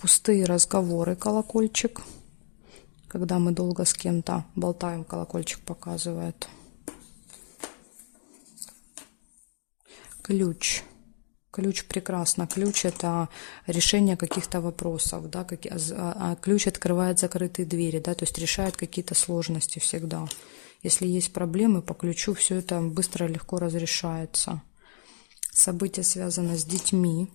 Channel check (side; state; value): right; silent; digital silence